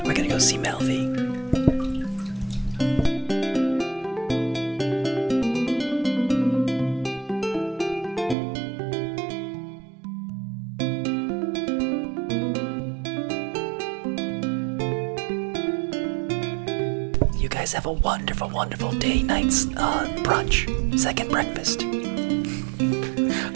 go see Melvie. You guys have a wonderful, wonderful day, night's brunch, second breakfast.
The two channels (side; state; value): left; drops out; at 8.3 s